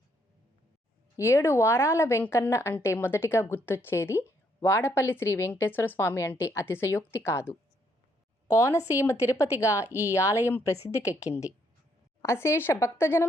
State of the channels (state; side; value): normal; both; correlation 0.72